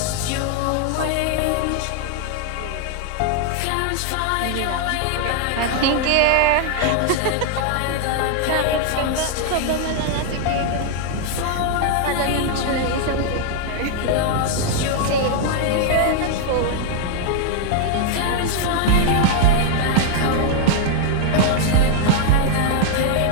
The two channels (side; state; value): both; different; correlation 0.00